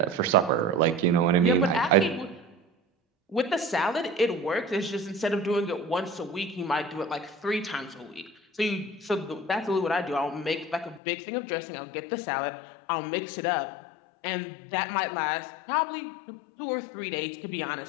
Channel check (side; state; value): right; drops out; at 11.0 s